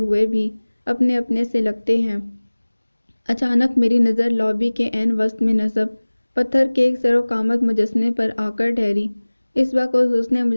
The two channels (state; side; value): inverted; both; correlation -1.00